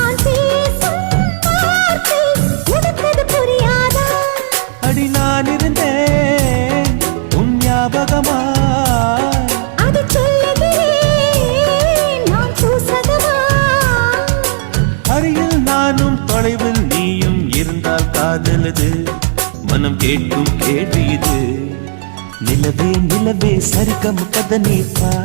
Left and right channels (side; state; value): left; silent; digital silence